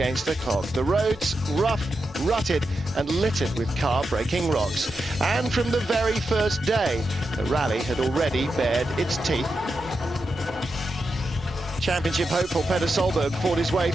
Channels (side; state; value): both; normal; correlation 0.87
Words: the clock. The roads rough, rutted and littered with car-breaking rocks. And from the very first day, the rally had already bared its teeth. Championship hopeful Peter Solberg fought his way